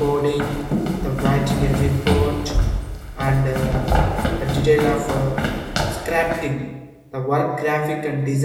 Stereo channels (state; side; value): identical; both; correlation 1.00